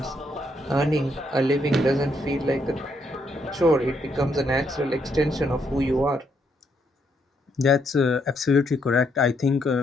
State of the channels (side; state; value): both; normal; correlation 0.75